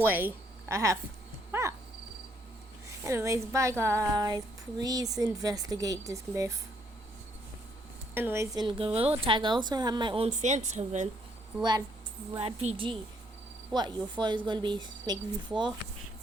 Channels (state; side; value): normal; both; correlation 0.70